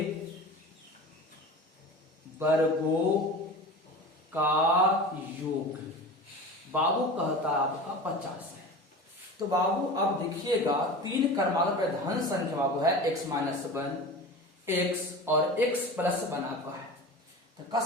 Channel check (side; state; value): both; normal; correlation 0.33